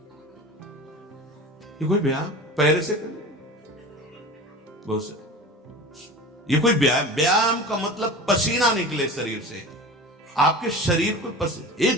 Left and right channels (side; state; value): both; normal; correlation 0.35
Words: ये कोई व्यायाम पैर से करने, बहुत से ये कोई व्यायाम का मतलब पसीना निकले शरीर से, आपके शरीर को